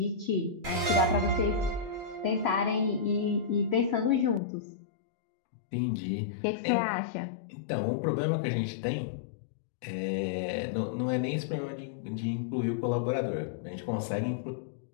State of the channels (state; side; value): drops out; right; at 4.4 s